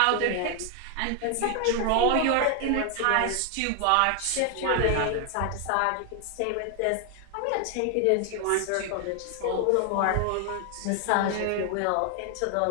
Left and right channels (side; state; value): both; different; correlation 0.00